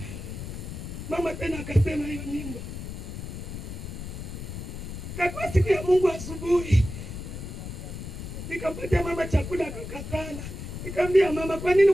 Mama tena akasema hiyo nyimbo. Kwa siku ya Mungu asubuhi. Nikampatia mama chakula akakatala. Nikamwambia mama kwa nini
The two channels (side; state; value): left; noise; rumble, 8 dB below the sound